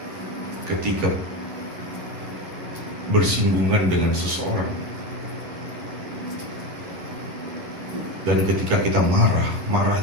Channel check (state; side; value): late; left; 11 ms